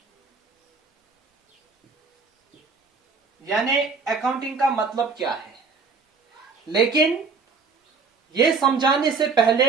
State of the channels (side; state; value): left; quieter; 4.7 dB